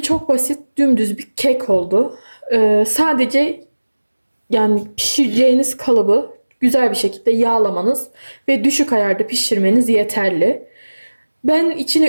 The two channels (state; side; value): inverted; both; correlation -1.00